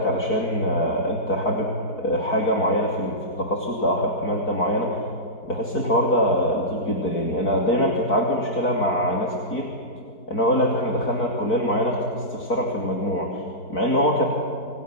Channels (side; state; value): right; late; 4.6 ms